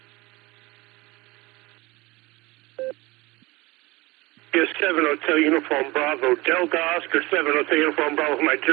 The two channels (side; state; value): left; quieter; 21.9 dB